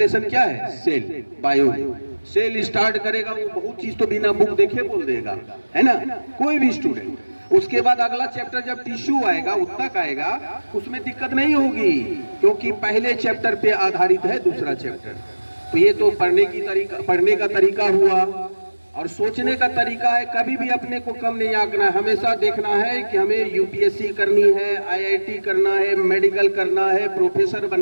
क्या है? Cell, bio. सेल स्टार्ट करेगा, वो बहुत चीज तो बिना बुक देखे बोल देगा, है ना, कोई भी स्टूडेंट। उसके बाद अगला चैप्टर जब टिश्यू आएगा, उत्तक आएगा, उसमें दिक्कत नहीं होगी, क्योंकि पहले चैप्टर पे आधारित है दूसरा चैप्टर। तो ये तो पढ़ने का तरीका हुआ। और सोचने का तरीका है, कभी भी अपने को कम नहीं आंकना है। हमेशा देखना है कि हमें यूपीएससी करनी है, आईआईटी करना है, मेडिकल करना है, प्रोफेसर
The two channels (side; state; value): both; inverted; correlation -1.00